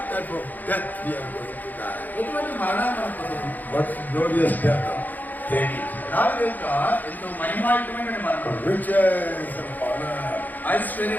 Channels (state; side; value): late; right; 0.084 ms